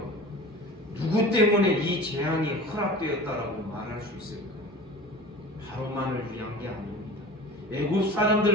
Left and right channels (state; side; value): normal; both; correlation 0.38